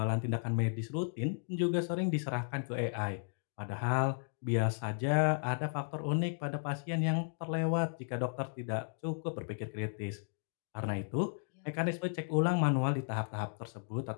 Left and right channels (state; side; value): silent; right; digital silence